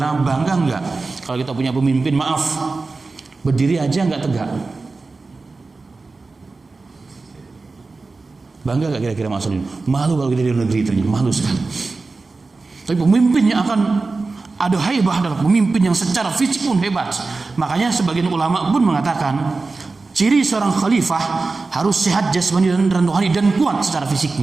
bangga enggak kalau kita punya pemimpin, maaf, berdiri aja enggak tegak? Bangga enggak kira-kira maksudnya? Malu kalau kita di negeri ternyata malu sekali. Tapi pemimpinnya akan ada haibah, adalah pemimpin yang secara fisik pun hebat. Makanya sebagian ulama pun mengatakan ciri seorang khalifah harus sehat jasmani dan rohani dan kuat secara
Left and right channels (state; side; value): quieter; left; 3.8 dB